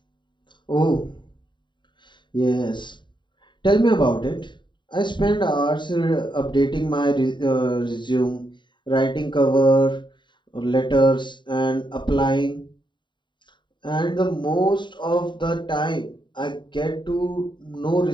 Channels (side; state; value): right; late; 0.23 ms